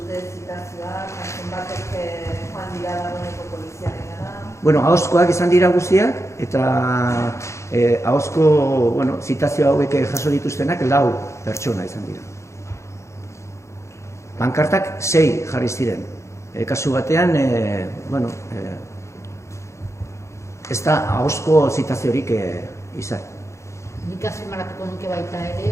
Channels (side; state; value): right; late; 0.14 ms